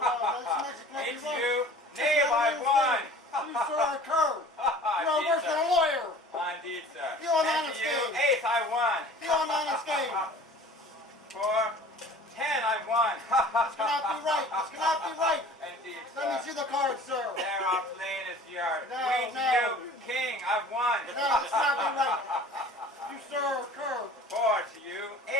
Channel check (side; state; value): both; normal; correlation 0.45